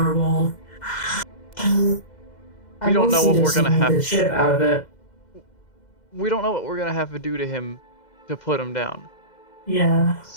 We don't know what we're gonna have. The shit out of it. We don't know what we're gonna have to do to him to put him down. Yeah.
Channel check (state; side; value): late; right; 2.0 ms